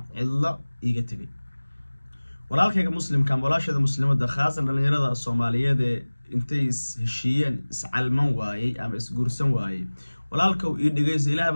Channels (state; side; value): inverted; both; correlation -1.00